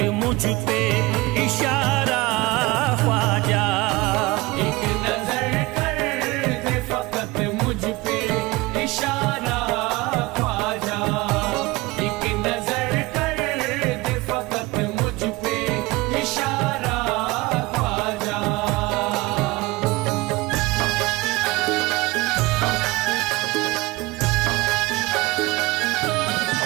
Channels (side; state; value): left; quieter; 21.8 dB